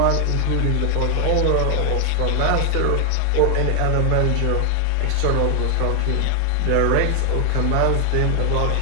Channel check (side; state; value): both; different; correlation 0.00